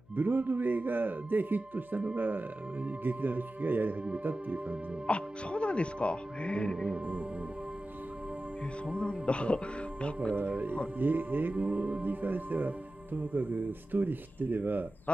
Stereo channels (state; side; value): noise; left; hum, 27 dB below the sound